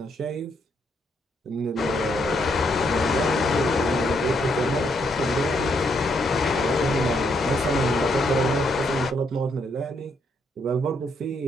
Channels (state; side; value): normal; both; correlation 0.75